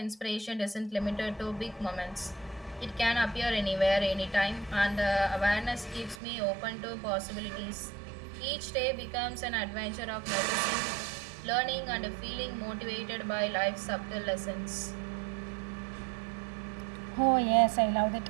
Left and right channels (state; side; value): drops out; left; at 6.2 s